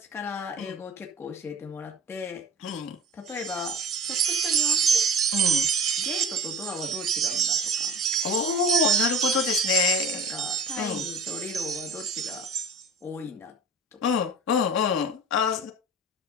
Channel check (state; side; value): normal; both; correlation 0.36